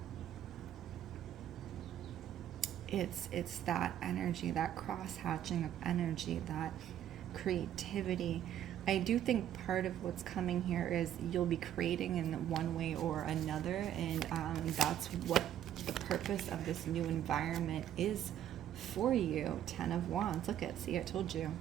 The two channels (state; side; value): quieter; left; 11.0 dB